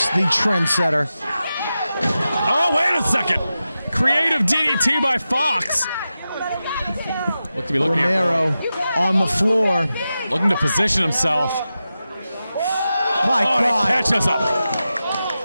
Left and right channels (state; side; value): inverted; both; correlation -0.92